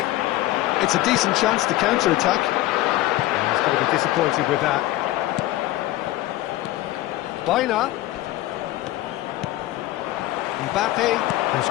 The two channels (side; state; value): right; quieter; 16.3 dB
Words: It's a decent chance to counter-attack. He's going to be disappointed with that. Bina. Mbappe has